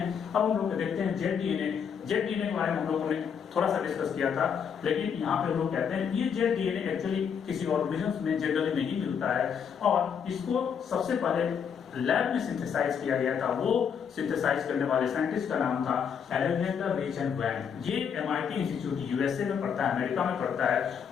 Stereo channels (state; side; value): quieter; right; 7.3 dB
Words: अब हम लोग देखते हैं जेड डीएनए। जेड डीएनए के बारे में हम लोगों ने थोड़ा सा डिस्कस किया था, लेकिन यहाँ पे हम लोग कहते हैं ये जेड डीएनए एक्चुअली किसी ऑर्गेनिज्म में जनरली नहीं मिलता है, और इसको सबसे पहले लैब में सिंथेसाइज किया गया था। वो सिंथेसाइज करने वाले साइंटिस्ट का नाम था अलेक्जेंडर रिच एंड वैन। ये एमआईटी इंस्टीट्यूट यूएसए में पड़ता है, अमेरिका में पड़ता है।